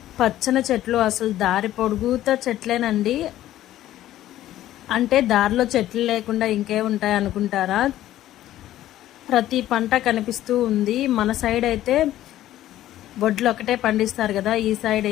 పచ్చని చెట్లు, అసలు దారి పొడుగుతా చెట్లేనండి. అంటే దారిలో చెట్లు లేకుండా ఇంకే ఉంటాయి అనుకుంటారా? ప్రతి పంట కనిపిస్తూ ఉంది. మన సైడ్ అయితే వడ్లు ఒకటే పండిస్తారు కదా, ఈ సైడ్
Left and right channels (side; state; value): right; quieter; 13.6 dB